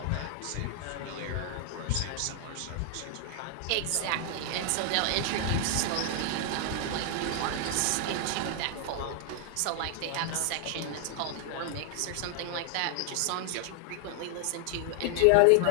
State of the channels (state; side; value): different; both; correlation 0.00